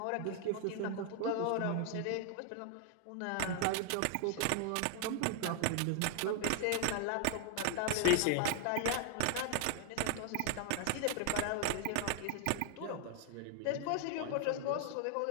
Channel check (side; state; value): both; different; correlation 0.00